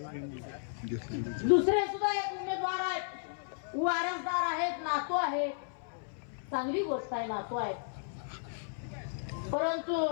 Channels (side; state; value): right; silent; 55 dB below the other